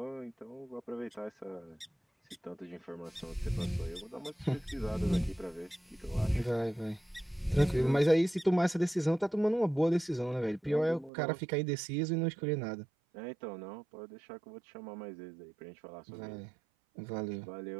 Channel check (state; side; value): drops out; left; at 11.1 s